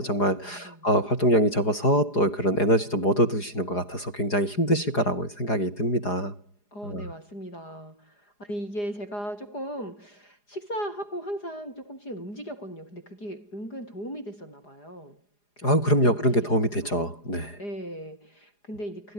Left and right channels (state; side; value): late; right; 4.9 ms